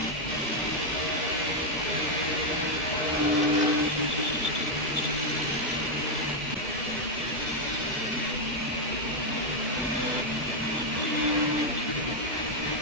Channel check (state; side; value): normal; both; correlation 0.01